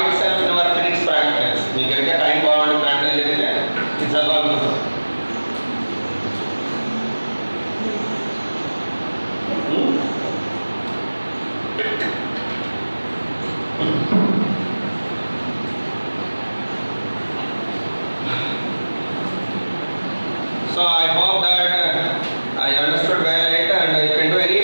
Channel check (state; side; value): inverted; both; correlation -1.00